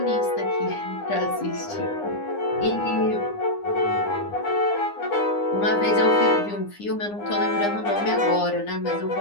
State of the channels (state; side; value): late; right; 9.8 ms